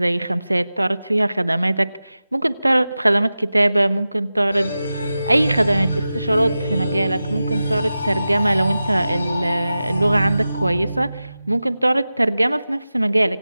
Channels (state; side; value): inverted; both; correlation -0.94